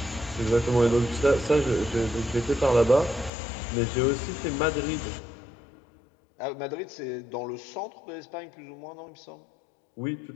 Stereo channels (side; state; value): right; drops out; at 3.3 s